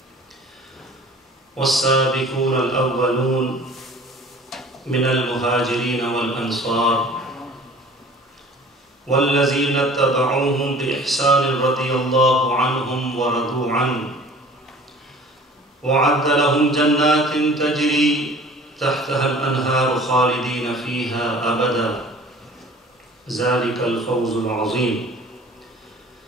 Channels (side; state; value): both; normal; correlation 0.47